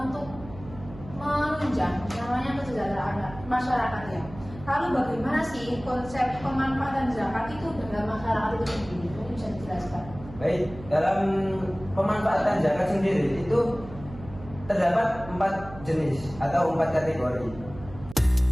untuk menunjang namanya kesejahteraan masyarakat ya. Lalu bagaimana sih konsep pemanfaatan zakat itu dalam masyarakat itu sendiri? Mungkin bisa dijelaskan. Baik, dalam pemanfaatan zakat sendiri itu terdapat 4 jenis atau 4 kategori.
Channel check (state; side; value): noise; right; hum, 16 dB below the sound